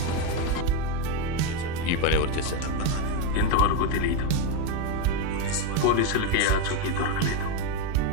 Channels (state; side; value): different; both; correlation 0.03